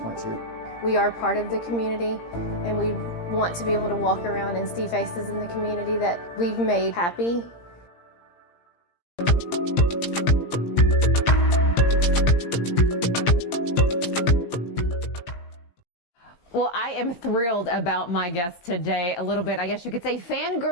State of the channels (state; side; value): late; right; 17 ms